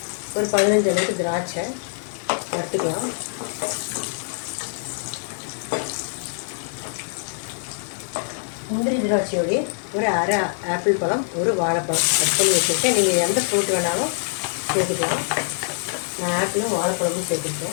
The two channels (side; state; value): right; silent; digital silence